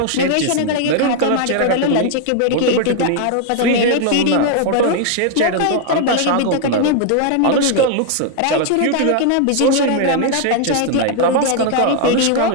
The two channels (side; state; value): both; different; correlation 0.00